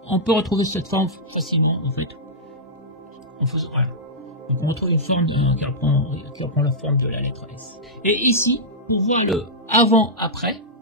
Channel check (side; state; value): both; normal; correlation -0.11